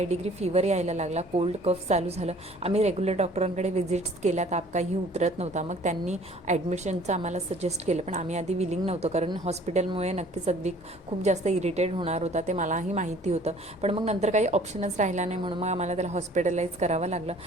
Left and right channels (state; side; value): normal; both; correlation 0.53